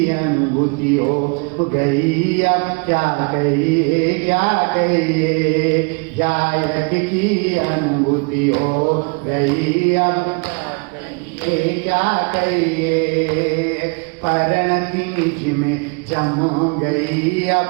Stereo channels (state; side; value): quieter; left; 33.4 dB